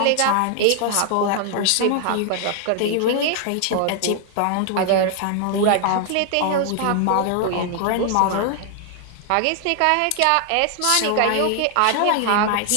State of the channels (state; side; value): different; both; correlation 0.00